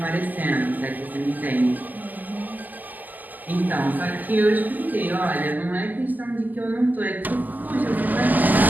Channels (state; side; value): late; left; 0.083 ms